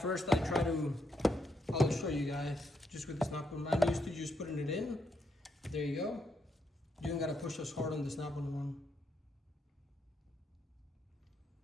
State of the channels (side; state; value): both; normal; correlation 0.78